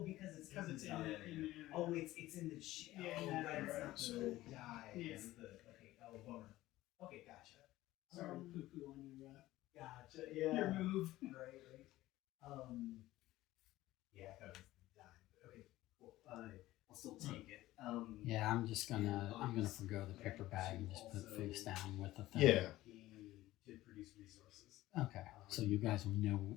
because it's in the. Oh, it's in the Yeah, oh, yeah, right, it's right, not so- the dye. Yeah. It's the okay. Oh, bummer. Okay, gotcha. Sorry, poo-poo on your. Gotcha. Yeah. Your move. Right. Yeah, I thought it was the dye. But okay, cool. I'll still take it. Yeah, I'm gonna forgo the paper bag and just put it face down with the thing. Yeah. He did produce resources. Okay. So you guys will know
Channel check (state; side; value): quieter; right; 16.4 dB